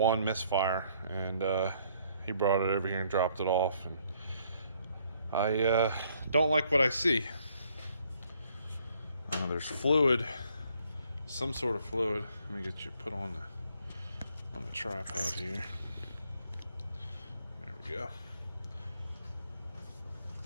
misfire, and he brought it over here and dropped it off. And I don't like what I see. There's fluid. Some sort of fluid. Let me get you put on the tripod here. There we go.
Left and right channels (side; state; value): both; inverted; correlation -0.66